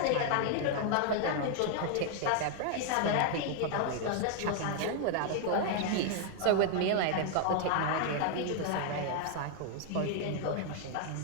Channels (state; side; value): different; both; correlation 0.00